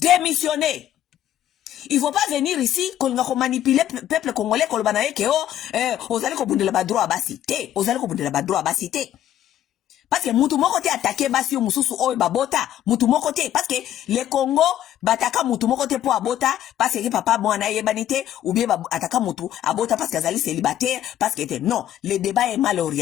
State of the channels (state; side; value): quieter; right; 11.7 dB